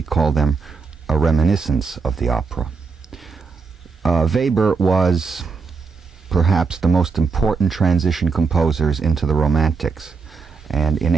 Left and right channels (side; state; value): left; quieter; 4.8 dB